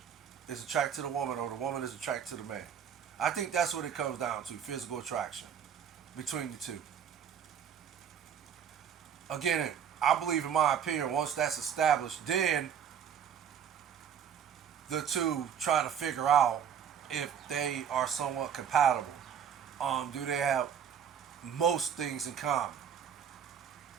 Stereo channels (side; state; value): left; quieter; 8.3 dB